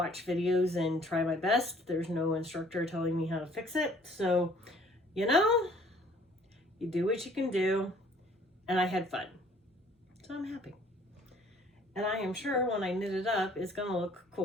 videos and try my best. There's no instructor telling me how to fix it. So, you do what you can do. And I had fun. So I'm happy. And I am sure when I knit it up, it's going to look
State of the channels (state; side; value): normal; both; correlation 0.57